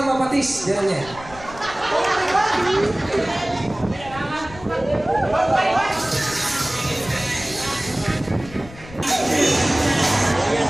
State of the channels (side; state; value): left; noise; rumble, 17 dB below the sound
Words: patis. Dira niya.